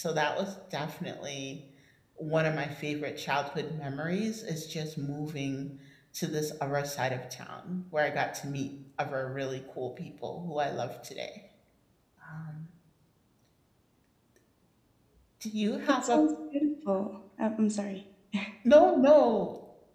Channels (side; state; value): both; identical; correlation 1.00